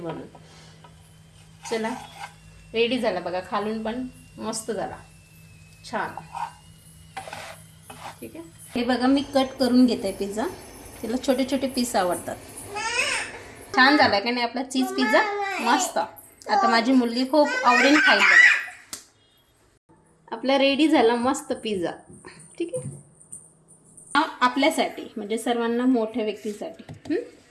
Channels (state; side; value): identical; both; correlation 1.00